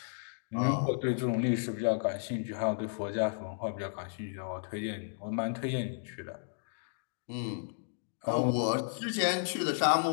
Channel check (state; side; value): silent; right; digital silence